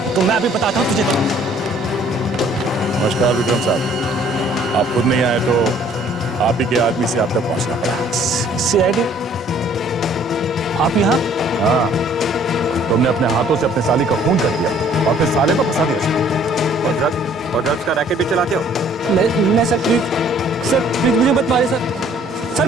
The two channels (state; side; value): normal; both; correlation 0.58